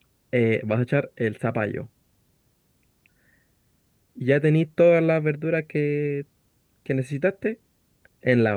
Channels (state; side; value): identical; both; correlation 1.00